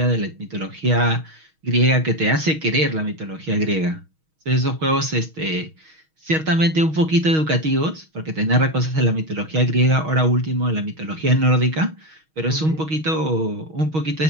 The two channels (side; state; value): left; late; 6.3 ms